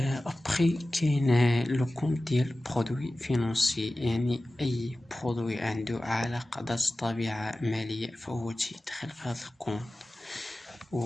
كاين لو كونت ديال برودوي فينونسي، يعني اي برودوي عنده علاقه ذات طبيعه ماليه فهو تيدخل في هذا الكونت.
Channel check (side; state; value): both; normal; correlation 0.96